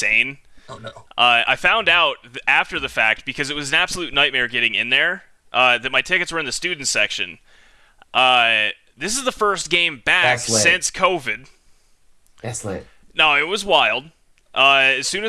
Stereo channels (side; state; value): both; identical; correlation 1.00